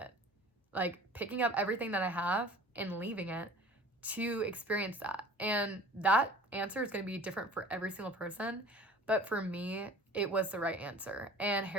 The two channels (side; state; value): both; normal; correlation 0.45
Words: Like, picking up everything that I have and leaving it to experience that. And that answer is going to be different for every single person. but for me, it was the right answer. And